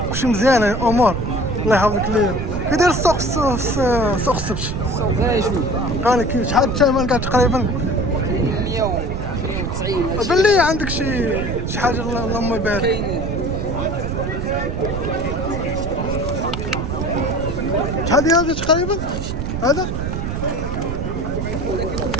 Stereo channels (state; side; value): noise; right; rumble, 3 dB below the sound